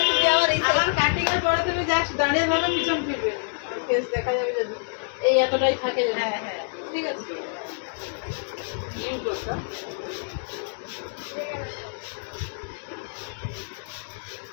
তুমি আবার এই আবার কাটিং এর পরে তুমি জাস্ট দাঁড়িয়ে ভালো পিছন ফিরবে, আর ফেস দেখা যাবে যদি এই এতটাই থাকে যদি। হ্যাঁ হ্যাঁ ঠিক আছে ইউ করছো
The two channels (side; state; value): right; silent; digital silence